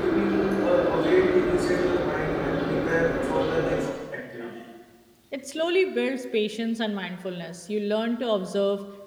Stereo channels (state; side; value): identical; both; correlation 1.00